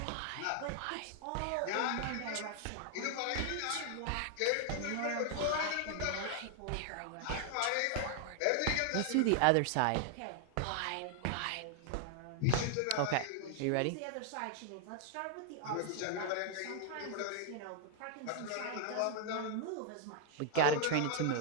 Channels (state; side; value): different; both; correlation 0.00